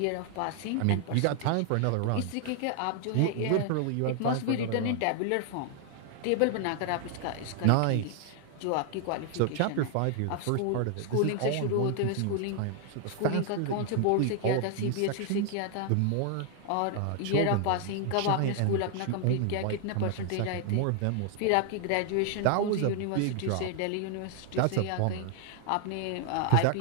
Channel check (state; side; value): different; both; correlation 0.00